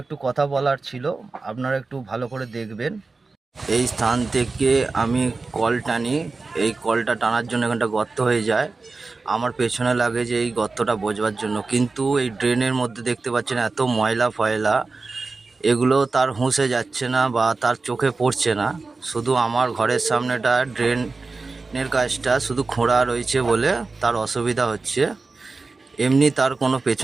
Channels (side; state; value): left; quieter; 3.9 dB